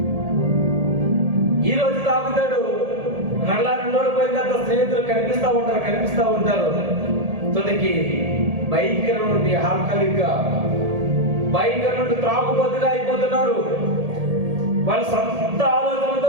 ఈ రోజు తాగుతాడు, మళ్ళా 2 రోజులు పోయిన తర్వాత స్నేహితులు కనిపిస్తా ఉంటారు. తొలికి భయంకరం నుండి ఆల్కహాలిక్గా, భయంకరం నుండి త్రాగుబోతుగా అయిపోతున్నారు. వాళ్ళ సొంత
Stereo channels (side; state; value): left; late; 1.7 ms